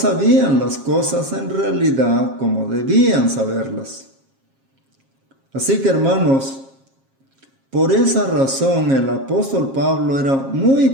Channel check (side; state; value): left; late; 7.4 ms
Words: las cosas en realidad como debían saberlas. Así que, hermanos, por esa razón el apóstol Pablo era